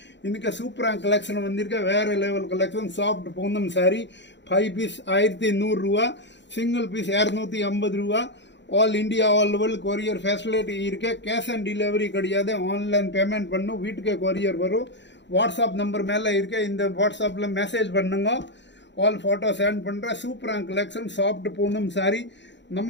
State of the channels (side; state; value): right; late; 0.52 ms